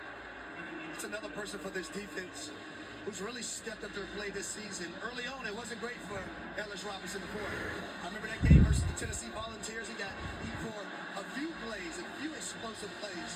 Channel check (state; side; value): identical; both; correlation 1.00